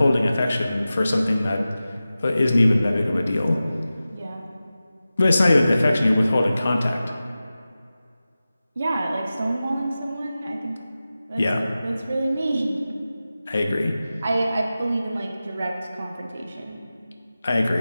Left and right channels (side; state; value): both; inverted; correlation -0.95